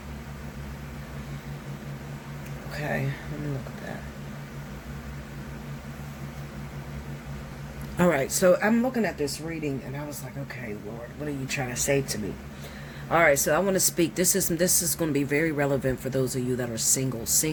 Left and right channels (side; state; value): both; identical; correlation 1.00